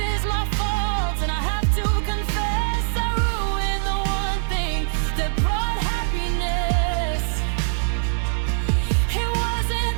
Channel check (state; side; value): silent; left; digital silence